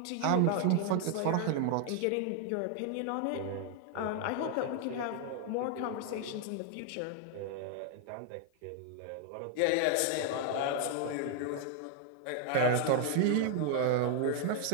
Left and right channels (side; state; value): both; different; correlation 0.00